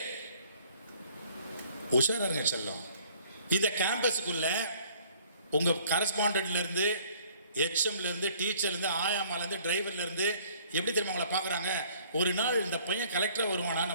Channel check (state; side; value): inverted; both; correlation -0.57